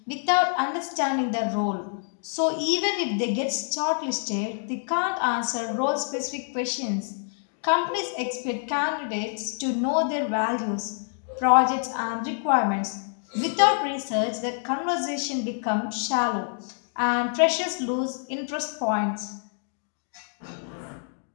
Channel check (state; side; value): silent; right; 60 dB below the other